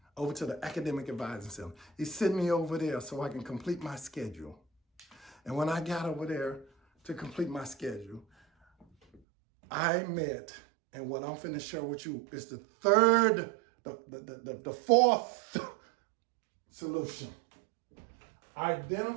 over to the Academic Advising Center. He sent me over there so I can complete my schedule. And when I got over there to complete my schedule, I met, and what I'm finna share with you is the fourth solution.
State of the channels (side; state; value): left; drops out; at 9.2 s